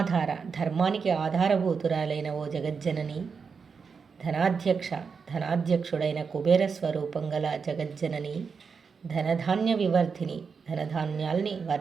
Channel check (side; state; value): left; quieter; 5.6 dB